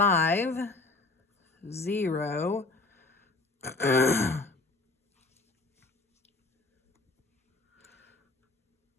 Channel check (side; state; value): right; quieter; 3.3 dB